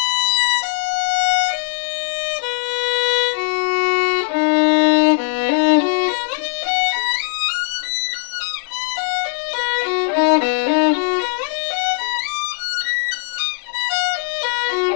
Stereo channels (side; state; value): right; silent; 66 dB below the other